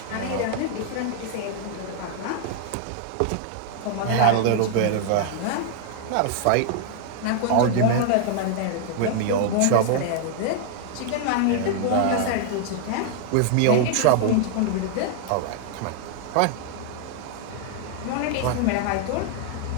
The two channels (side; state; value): both; different; correlation 0.00